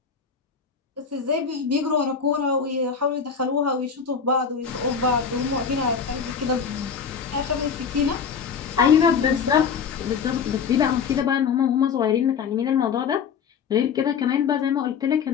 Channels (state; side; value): quieter; right; 6.4 dB